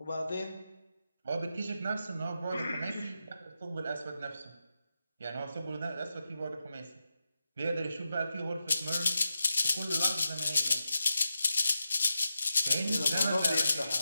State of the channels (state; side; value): inverted; both; correlation -0.89